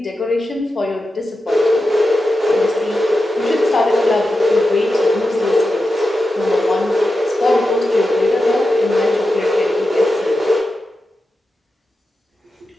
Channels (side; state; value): both; normal; correlation 0.91